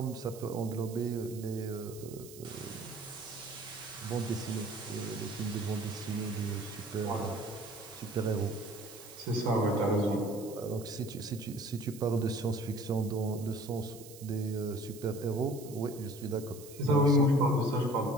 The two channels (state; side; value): noise; right; hiss, 17 dB below the sound